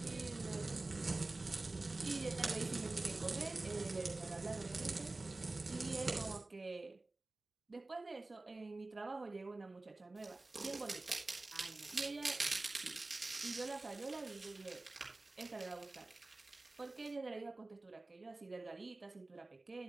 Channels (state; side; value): quieter; left; 3.1 dB